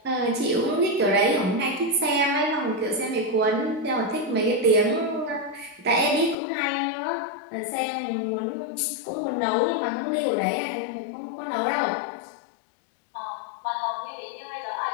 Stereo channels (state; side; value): drops out; right; at 6.4 s